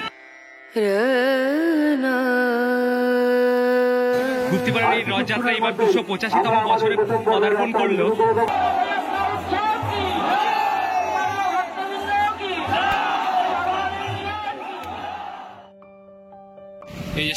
গুপ্তিপাড়ার এই রথযাত্রা এবার 285তম বছরে পদার্পণ করলো। এই যে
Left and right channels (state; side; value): identical; both; correlation 1.00